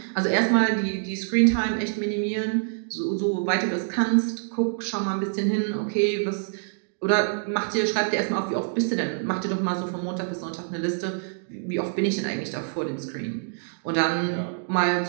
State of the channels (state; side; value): silent; left; digital silence